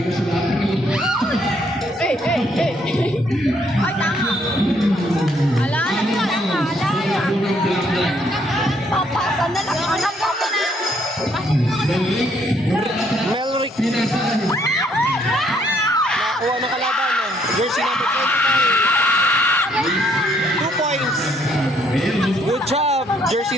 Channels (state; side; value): normal; both; correlation 0.68